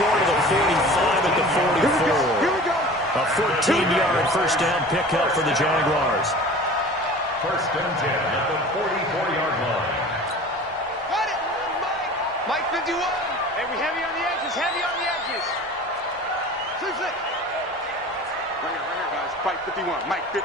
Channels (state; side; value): normal; both; correlation 0.40